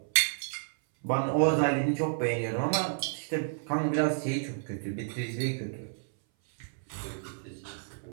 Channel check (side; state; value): left; silent; 57 dB below the other